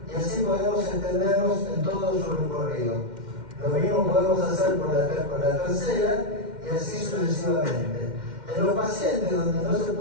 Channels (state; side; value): late; left; 2.1 ms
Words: y así podemos extendernos en todo su recorrido. Lo mismo podemos hacer con la tercera y así sucesivamente. En los pacientes donde no se